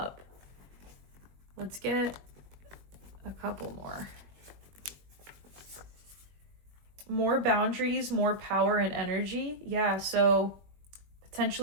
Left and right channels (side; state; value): left; late; 21 ms